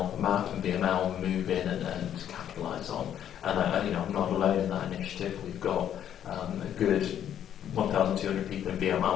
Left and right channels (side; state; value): right; quieter; 10.1 dB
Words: Map and VML move in and capitalise on. And I'm not alone in that initiative. We've got a good 1,200 people in